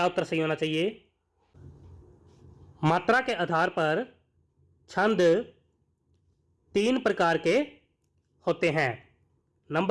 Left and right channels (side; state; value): both; identical; correlation 1.00